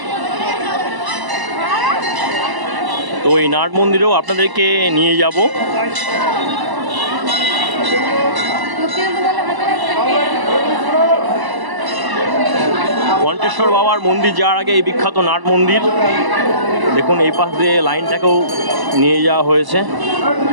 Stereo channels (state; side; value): late; left; 1.0 ms